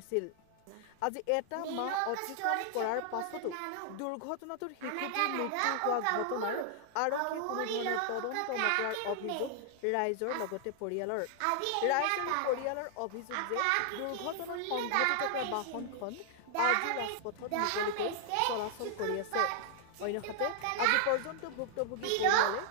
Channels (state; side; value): different; both; correlation 0.00